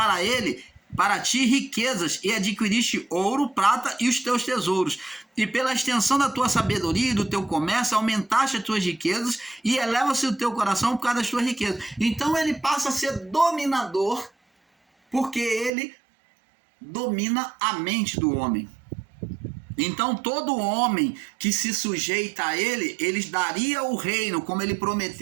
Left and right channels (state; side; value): drops out; left; at 15.7 s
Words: ti riquezas, e adquiriste ouro, prata e os teus tesouros. E pela extensão da tua sabedoria e do teu comércio, aumentaste as tuas riquezas, e eleva-se o teu coração por causa das tuas riquezas. Então ele passa a ser dominador, porque ele domina a mente do homem. Então todo homem que se sujeita a ele, ele daria o reino, como ele